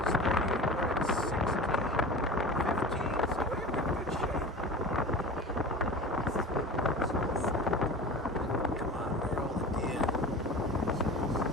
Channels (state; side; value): normal; both; correlation 0.34